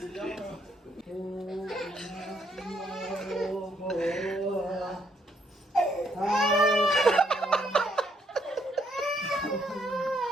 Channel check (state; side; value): normal; both; correlation 0.72